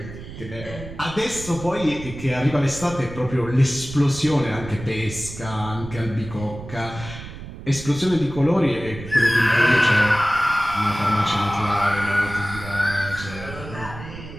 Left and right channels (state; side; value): noise; right; rumble, 12 dB below the sound